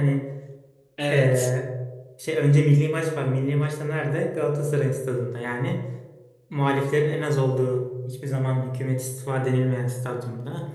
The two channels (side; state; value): both; identical; correlation 1.00